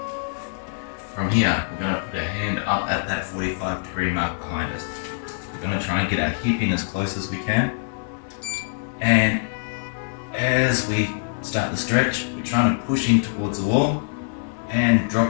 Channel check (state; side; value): silent; right; 63 dB below the other